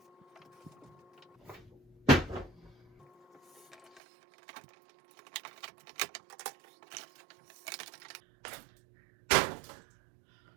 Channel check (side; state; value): left; drops out; at 4.0 s